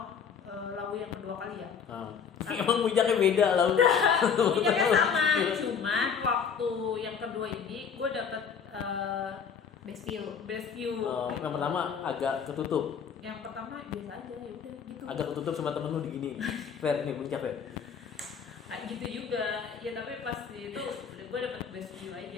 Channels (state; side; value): quieter; right; 6.8 dB